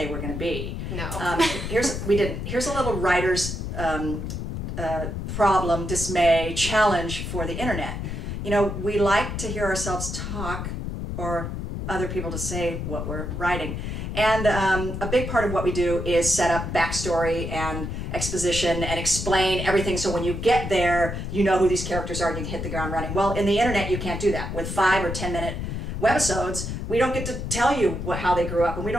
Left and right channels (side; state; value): left; noise; rumble, 5 dB below the sound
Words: were going to be. No. Here's a little writer's problem, dismay, challenge for the internet. You know, we like to hear ourselves talk, or other people to say what we're writing. And a big part of what we do is set up backstory and exposition and explain everything, so when you get there, you know who these characters are and you can hit the ground running. Well, in the internet, you can't do that. With 5 or 10 minute webisodes, we don't get to tell you how they grew up, and we